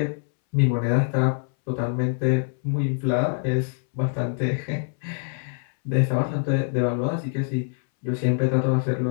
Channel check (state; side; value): silent; right; 62 dB below the other